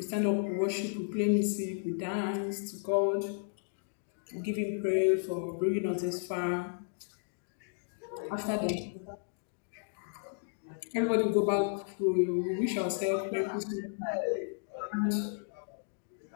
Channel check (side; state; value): right; silent; digital silence